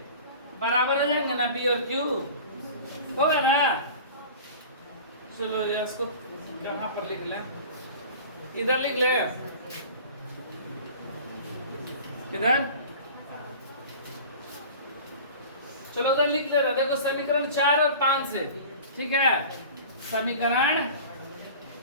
बराबर हो जाएंगे ना, B और Q होगा ना। चलो यार, इसको कहाँ पर लिख लें? इधर लिख ले, इधर, चलो उधर लिख ले रहा। देखो समीकरण 4 और 5 से, ठीक है, समीकरण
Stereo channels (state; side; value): inverted; both; correlation -0.40